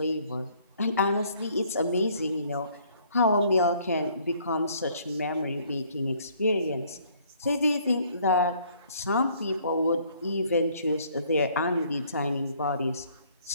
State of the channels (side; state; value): both; inverted; correlation -0.62